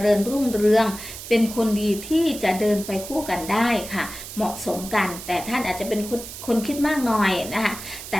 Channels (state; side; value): noise; right; hiss, 11 dB below the sound